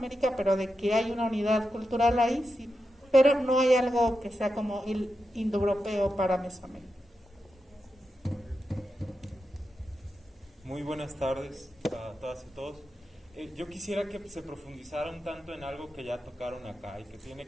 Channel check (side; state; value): both; normal; correlation 0.89